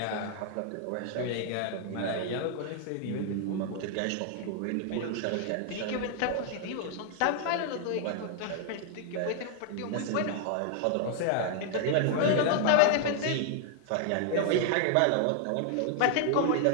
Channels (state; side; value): different; both; correlation 0.00